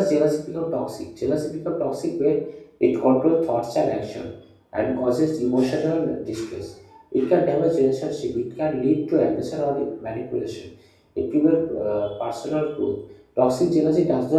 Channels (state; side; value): identical; both; correlation 1.00